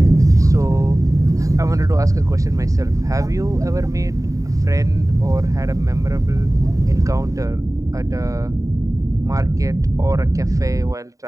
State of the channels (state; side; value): late; left; 0.16 ms